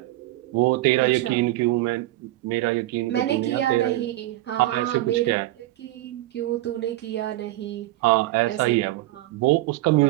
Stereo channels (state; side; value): quieter; left; 16.8 dB